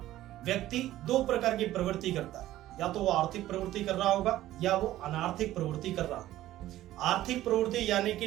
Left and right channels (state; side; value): quieter; left; 14.5 dB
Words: व्यक्ति दो प्रकार की प्रवृत्ति करता है, या तो वो आर्थिक प्रवृत्ति कर रहा होगा या वो अनार्थिक प्रवृत्ति कर रहा होगा। आर्थिक प्रवृत्ति यानी कि